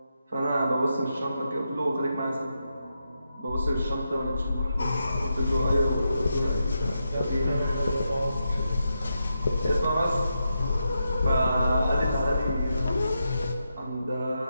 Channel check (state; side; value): inverted; both; correlation -0.85